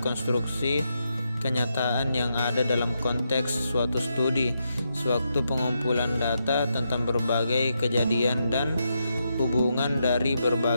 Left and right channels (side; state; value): both; inverted; correlation -0.83